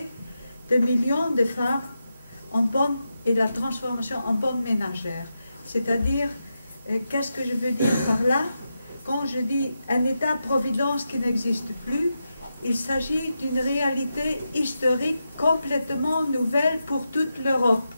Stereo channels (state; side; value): inverted; both; correlation -0.88